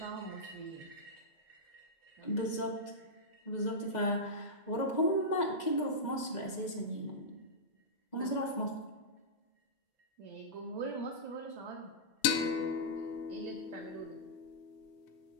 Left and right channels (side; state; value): right; late; 2.0 ms